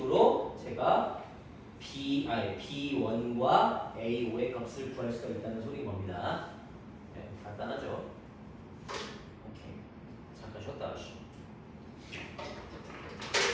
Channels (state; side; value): identical; both; correlation 1.00